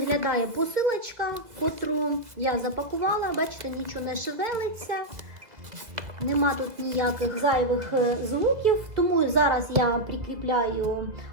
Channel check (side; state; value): left; late; 2.0 ms